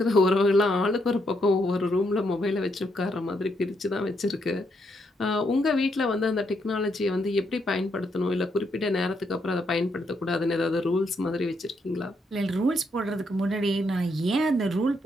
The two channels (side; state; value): both; normal; correlation 0.77